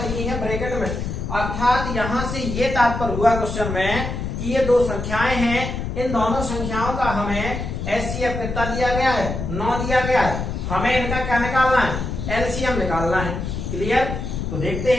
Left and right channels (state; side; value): noise; left; rumble, 4 dB below the sound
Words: है ब्रैकेट में, अर्थात यहाँ से ये तात्पर्य हुआ क्वेश्चन में कि ये दो संख्याएं हैं, इन दोनों संख्याओं का हमें HCF कितना दिया गया है, 9 दिया गया है। हमें इनका क्या निकालना है, LCM निकालना है। क्लियर। तो देखते